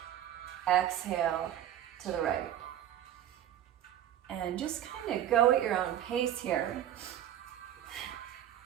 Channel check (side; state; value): left; quieter; 11.3 dB